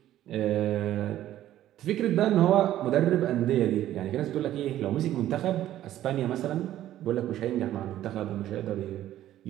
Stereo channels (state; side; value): quieter; left; 12.9 dB